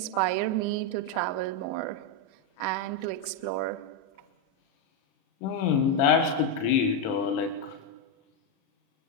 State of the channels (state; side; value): late; right; 37 ms